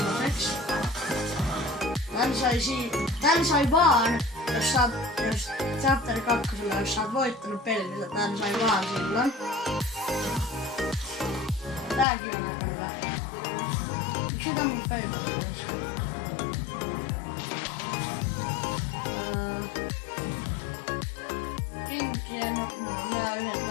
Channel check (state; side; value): drops out; right; at 12.1 s